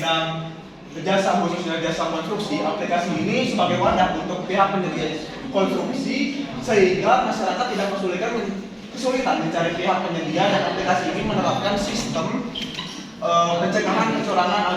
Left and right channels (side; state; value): both; identical; correlation 1.00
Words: jasa, khususnya jasa konstruksi. Aplikasi ini sebagai wadah untuk pihak penyedia konstruksi sehingga masyarakat tidak kesulitan mencari pihak penyedia, dan aplikasi ini menerapkan sistem pencegahan